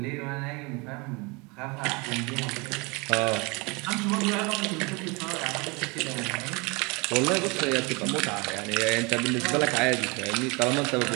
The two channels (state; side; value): quieter; left; 28.0 dB